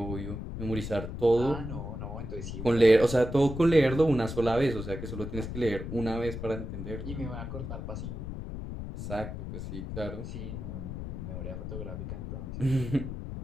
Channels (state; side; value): noise; left; rumble, 7 dB below the sound